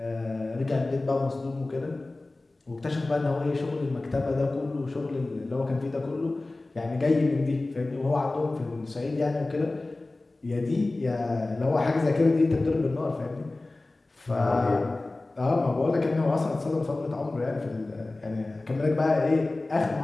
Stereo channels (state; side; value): quieter; right; 3.0 dB